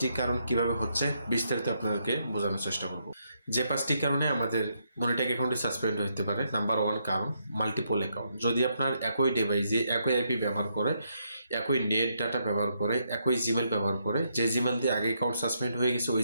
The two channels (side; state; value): both; inverted; correlation -0.77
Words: কারণ কিভাবে হচ্ছে বিস্তারিত আপনাদেরকে বোঝানোর চেষ্টা করবো। যে 5টি কারণে আমাদের মনিট্যাগ অ্যাকাউন্টে সাসপেন্ড হতে পারে। নাম্বার 1 কারণ, মাল্টিপল অ্যাকাউন্ট। যদি আপনার একই ডিভাইসে একই আইপি ব্যবহার করে, একই নেট ডাটা ব্যবহার করে, একই জিমেল ব্যবহার করে, যে জিমেল দিয়ে আগে অ্যাকাউন্ট সাসপেন্ড হয়ে গেছে ওই